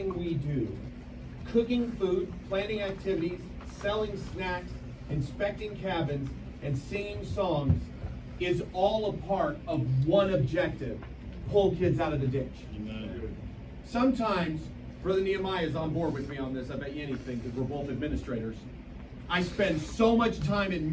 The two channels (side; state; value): both; identical; correlation 1.00